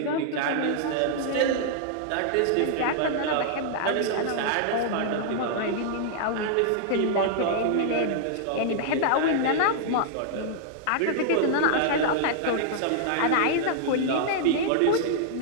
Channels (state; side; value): different; both; correlation -0.01